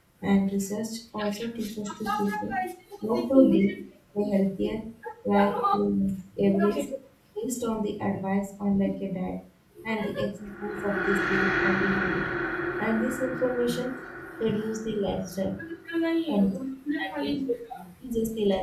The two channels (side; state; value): both; identical; correlation 1.00